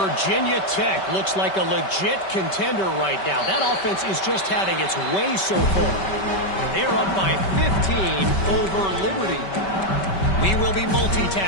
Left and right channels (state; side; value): late; right; 5.2 ms